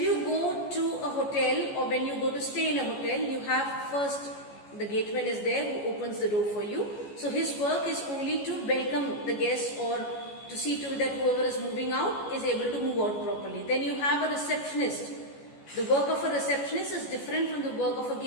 go to a hotel or when you go to stay in a hotel, you have first the gateman is there who opens the door for you. So his work is only to welcome the guests or to see to that whoever is moving out is able to move out properly. Then you have a receptionist. The work of a receptionist is different from the work of a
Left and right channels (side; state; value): right; late; 14 ms